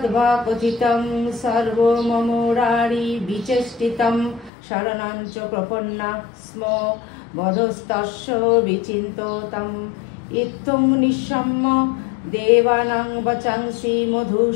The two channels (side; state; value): right; drops out; at 4.5 s